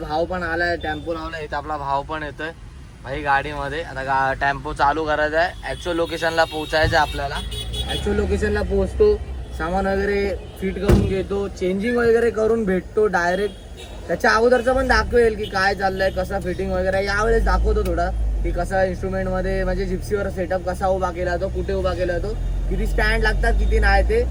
पण आलाय टेम्पो लावलाय इथं आपला भाव पण येतोय भाई गाडीमध्ये आता टेम्पो चालू करायचा आहे ऍक्च्युअल लोकेशनला पोहोचायचं आहे आपल्याला ऍक्च्युअल लोकेशनला पोहोचतो सामान वगैरे फिट करून घेतो चेंजिंग वगैरे करून भेटतो डायरेक्ट त्याच्या अगोदरचं पण दाखवेल की काय चाललंय कसं फिटिंग वगैरे यावेळेस दाखवतो थोडा की कसा इन्स्ट्रुमेंटमध्ये म्हणजे जिप्सीवर सेटअप कसा उभा केला जातो कुठे उभा केला जातो किती स्टँड लागतात किती नाही ते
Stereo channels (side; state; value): both; identical; correlation 1.00